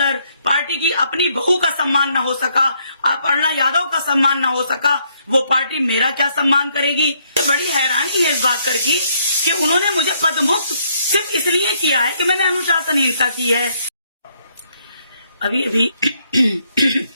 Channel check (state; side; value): inverted; both; correlation -0.71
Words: पार्टी की अपनी बहू का सम्मान न हो सका, अपर्णा यादव का सम्मान न हो सका, वो पार्टी मेरा क्या सम्मान करेगी। बड़ी हैरानी है इस बात कर की कि उन्होंने मुझे पदमुक्त सिर्फ इसलिए किया है कि मैंने अनुशासनहीनता की है। अभी अभी